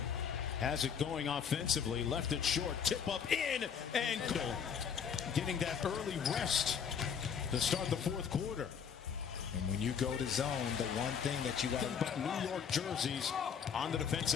has it going offensively. Left it short. Tip up in and goal. Getting that early rest to start the fourth quarter. And when you go to zone, the one thing that you got to... But New York jerseys on the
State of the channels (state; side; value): quieter; right; 7.3 dB